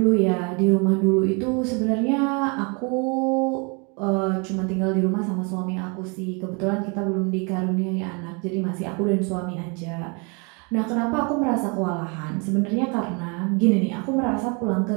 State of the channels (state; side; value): quieter; left; 33.0 dB